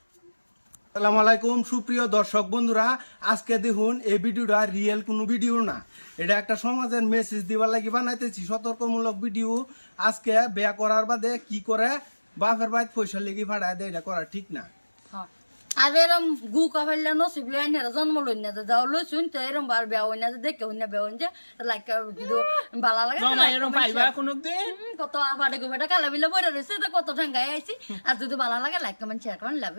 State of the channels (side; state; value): both; inverted; correlation -1.00